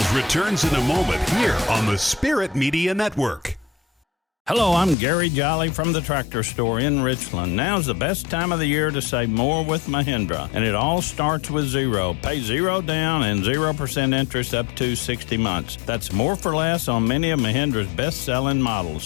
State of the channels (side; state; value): right; drops out; at 5.0 s